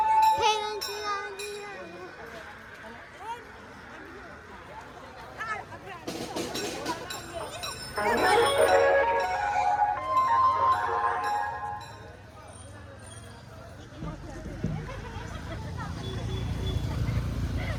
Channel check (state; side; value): identical; both; correlation 1.00